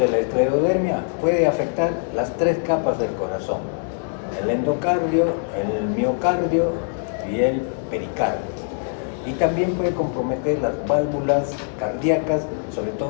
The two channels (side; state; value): right; silent; 61 dB below the other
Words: la esclerodermia puede afectar las 3 capas del corazón. el endocardio, el miocardio y el pericardio. Y también puede comprometer las válvulas cardíacas, sobre